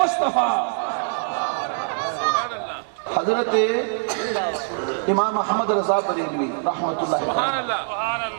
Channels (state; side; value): silent; left; digital silence